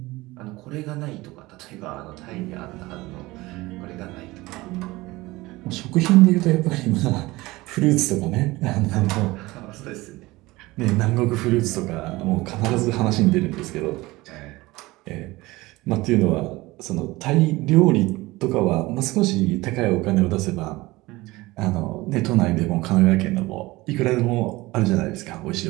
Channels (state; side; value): quieter; left; 20.3 dB